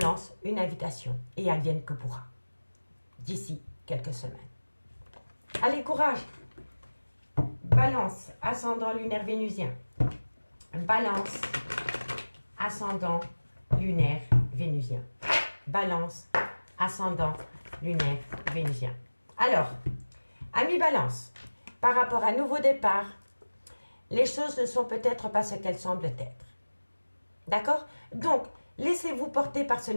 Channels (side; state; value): both; inverted; correlation -1.00